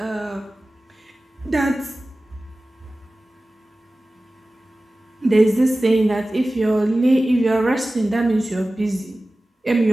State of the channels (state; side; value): normal; both; correlation 0.96